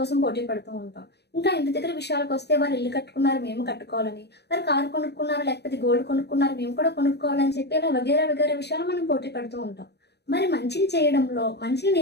పోటీ పడుతూ ఉంటాం. ఇంకా ఇంటి దగ్గర విషయాలకొస్తే వాళ్ళు ఇల్లు కట్టుకున్నారు మేము కట్టుకోవాలని, వారు కారు కొనుక్కున్నారు లేకపోతే గోల్డ్ కొనుక్కున్నారు మేము కూడా కొనుక్కోవాలని చెప్పి ఇలా వగైరా వగైరా విషయాలు మనం పోటీ పడుతూ ఉంటాం. మరి మంచిని చేయడంలో, మంచిని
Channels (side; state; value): right; late; 0.48 ms